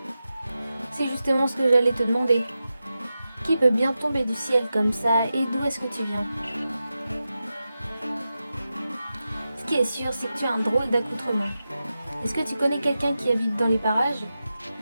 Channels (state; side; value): inverted; both; correlation -0.91